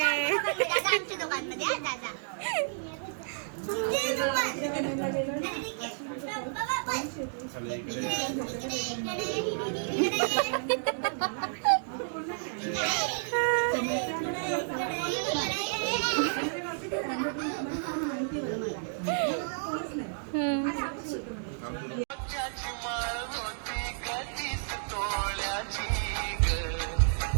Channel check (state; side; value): silent; left; digital silence